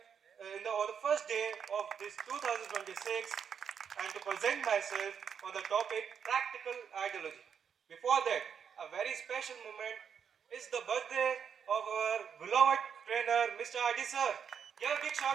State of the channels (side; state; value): left; quieter; 7.4 dB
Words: on the first day of this 2026 and to present myself on the topic practical ideology. Before that, a very special moment is the birthday of our beloved trainer, Mr. Adi sir. Give a big